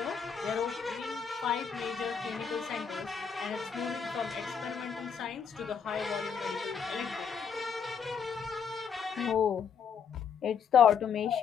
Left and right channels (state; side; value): quieter; right; 6.8 dB